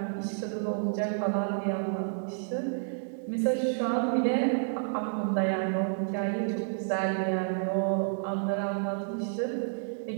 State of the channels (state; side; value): silent; left; digital silence